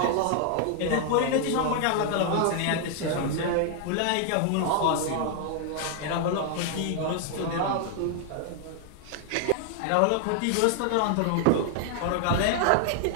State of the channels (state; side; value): different; both; correlation 0.00